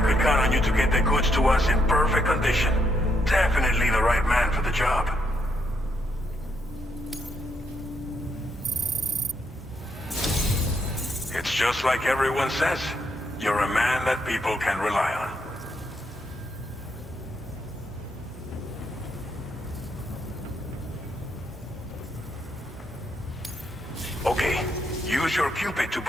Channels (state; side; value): normal; both; correlation 0.77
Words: could count on you to get the goods to us in perfect condition. Definitely the right man for the job. It's just like everyone says. You're a man that people can rely on. Okay, use your Cupid to